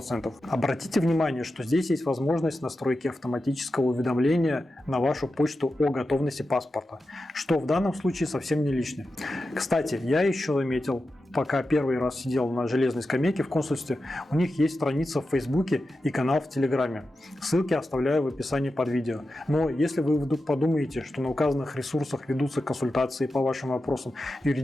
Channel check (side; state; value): both; normal; correlation 0.91